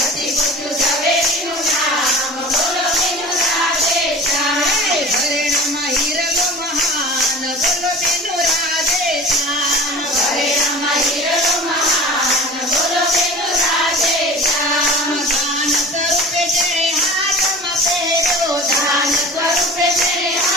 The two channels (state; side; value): normal; both; correlation 0.38